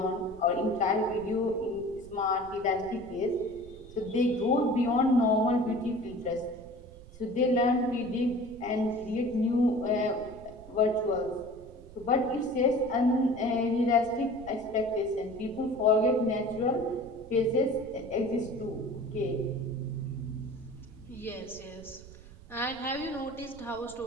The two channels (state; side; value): noise; right; rumble, 19 dB below the sound